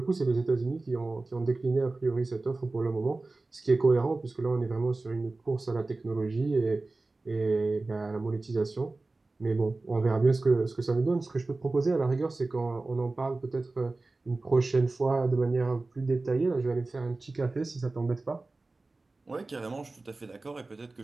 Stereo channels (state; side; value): quieter; left; 3.3 dB